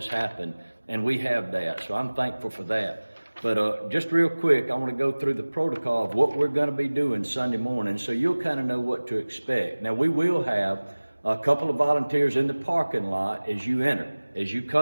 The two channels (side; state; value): both; inverted; correlation -1.00